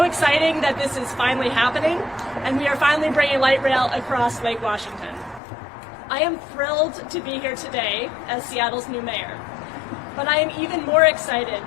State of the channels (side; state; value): right; drops out; at 5.4 s